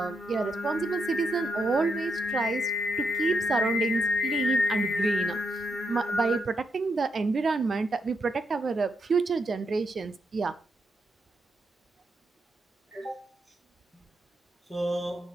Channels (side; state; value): both; normal; correlation 0.81